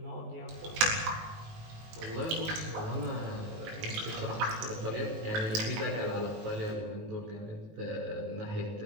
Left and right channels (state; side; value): late; left; 19 ms